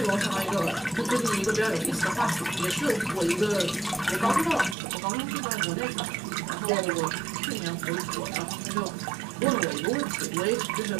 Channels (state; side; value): drops out; left; at 4.8 s